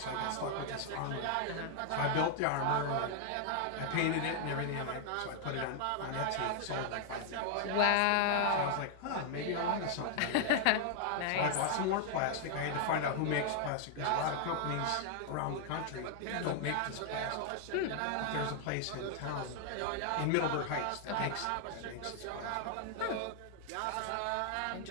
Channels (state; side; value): different; both; correlation 0.00